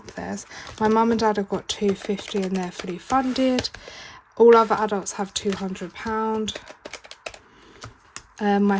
theirs. My mum and dad have got 250 and they're fully funded. All other adults have £200. My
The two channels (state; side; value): identical; both; correlation 1.00